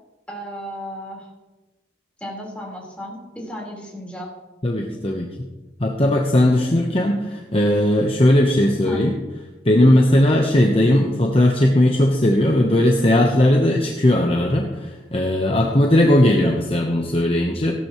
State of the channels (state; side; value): normal; both; correlation 0.82